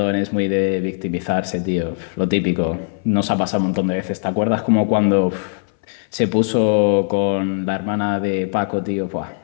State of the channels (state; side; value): silent; right; 61 dB below the other